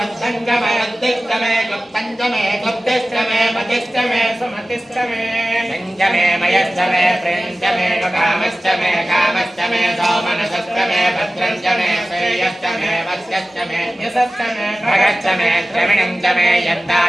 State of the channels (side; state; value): both; normal; correlation 0.96